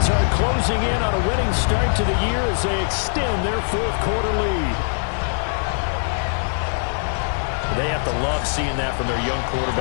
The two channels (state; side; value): silent; right; 61 dB below the other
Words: are closing in on a winning start to the year as they extend their 4th quarter lead. They have to love seeing that from their young